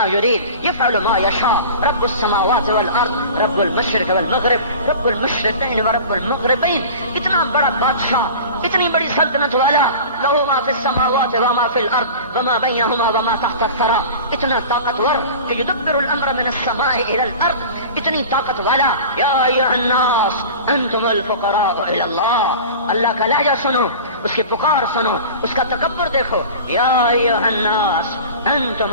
يريد يفعل ما يشاء رب السماوات والارض رب المشرق والمغرب رب المشرقین ورب المغربین. اتنا بڑا بادشاہ، اتنی بڑی سلطنت والا، لہو ما فی السماوات وما فی الارض وما بینہما وما تحت الثری، اتنا طاقتور کہ یدبر الامر من السماء الى الارض، اتنی طاقت والا. یا ایھا الناس انتم الفقراء الى اللہ. اللہ کا لہجہ سنو، اس کی پکار سنو، اس کا تکبر دیکھو. یا ایھا الناس انتم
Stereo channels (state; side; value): inverted; both; correlation -0.37